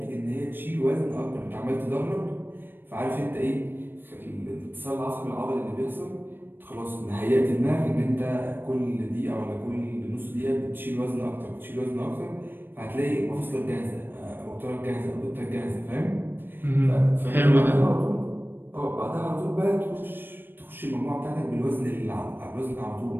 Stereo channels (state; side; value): late; left; 0.097 ms